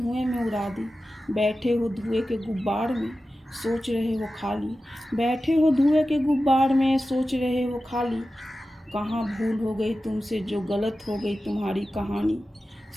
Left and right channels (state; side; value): normal; both; correlation 0.94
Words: में उड़ा दी। बैठे हो धुएं के गुब्बार में, सोच रहे हो खाली। बैठे हो धुएं के गुब्बार में, सोच रहे हो खाली। कहाँ भूल हो गई तुमसे जो गलत हो गई तुम्हारी कहानी।